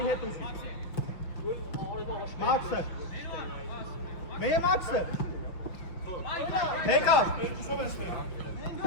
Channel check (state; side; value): late; right; 5.8 ms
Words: Max. Mehr Max.